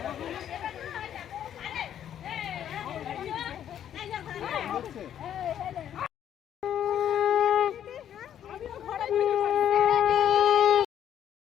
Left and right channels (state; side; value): quieter; right; 10.1 dB